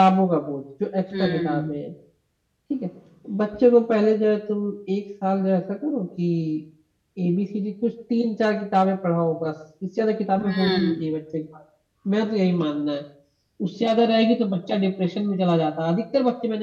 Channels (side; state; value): both; identical; correlation 1.00